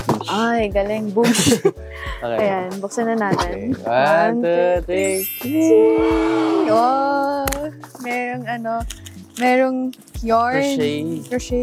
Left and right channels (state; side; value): identical; both; correlation 1.00